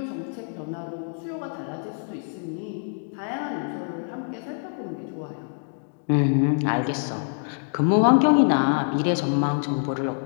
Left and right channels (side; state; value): right; silent; 61 dB below the other